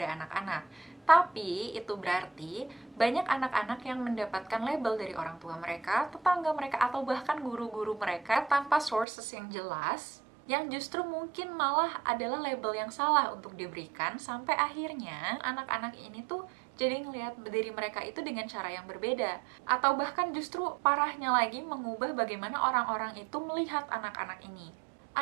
anak-anak. Tapi, itu berarti banyak anak-anak yang mendapatkan label dari orang tua mereka, tetangga mereka, atau bahkan guru-guru mereka tanpa sources yang jelas, yang justru mungkin malah adalah label yang salah untuk diberikan, sampai akhirnya anak-anak ini tuh jadi ngelihat diri mereka itu dengan cara yang berbeda. Atau bahkan justru parahnya lagi mengubah bagaimana orang-orang itu melihat anak-anak ini.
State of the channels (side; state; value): left; drops out; at 9.1 s